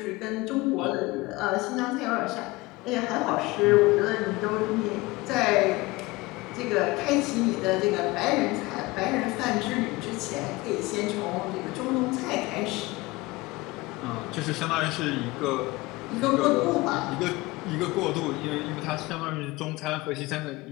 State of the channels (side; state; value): right; quieter; 21.6 dB